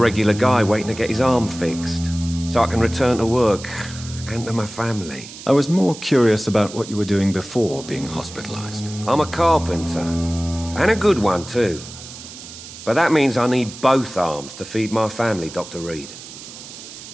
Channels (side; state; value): right; noise; hiss, 14 dB below the sound